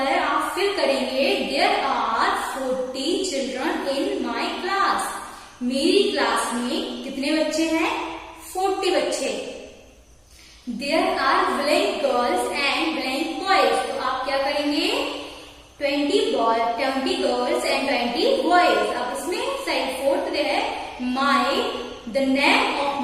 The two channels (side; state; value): both; identical; correlation 1.00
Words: आप फिल करेंगे there are 40 children in my class. मेरी क्लास में कितने बच्चे हैं, 40 बच्चे। There are blank girls and blank boys. तो आप क्या करेंगे, 20 गर्ल्स एंड 20 बॉयज। अब इसमें साइड 4th दे है my, the name of